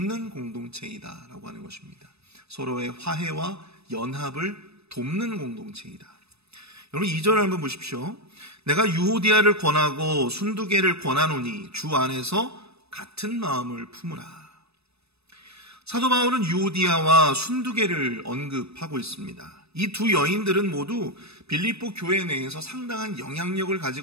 공동체이다라고 하는 것입니다. 서로의 화해와 연합을 돕는 공동체이다. 여러분 2절을 한번 보십시오. 내가 유오디아를 권하고 순두계를 권하노니 주 안에서 같은 마음을 품으라. 사도 바울은 유오디아와 순두계를 언급하고 있습니다. 이 두 여인들은 모두 빌립보 교회 내에서 상당한 영향력을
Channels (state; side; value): late; left; 0.79 ms